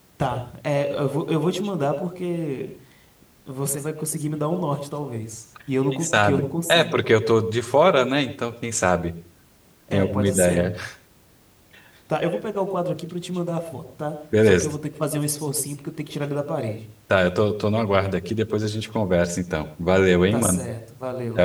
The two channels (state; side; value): identical; both; correlation 1.00